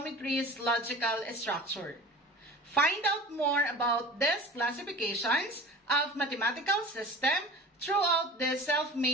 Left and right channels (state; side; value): normal; both; correlation 0.38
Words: logical structure. Find out more about these classifications of mathematical system throughout this